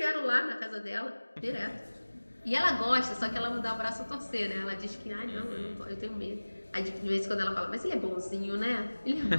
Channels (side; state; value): both; inverted; correlation -1.00